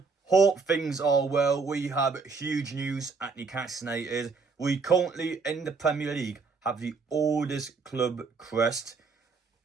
Hope things are well. We have huge news at Newcastle United. We currently, in the Premier League, have the oldest club crest.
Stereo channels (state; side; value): quieter; left; 4.6 dB